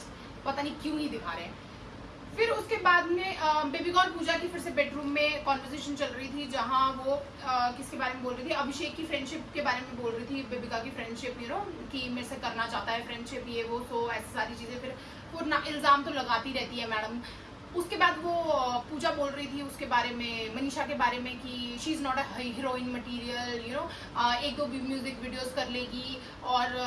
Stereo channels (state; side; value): identical; both; correlation 1.00